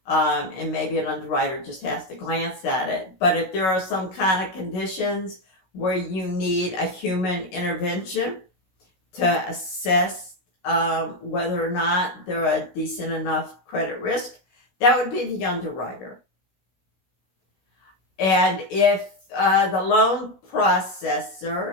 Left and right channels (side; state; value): right; late; 16 ms